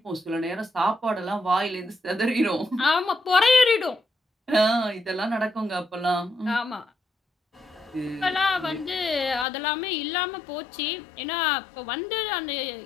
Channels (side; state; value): right; drops out; at 9.5 s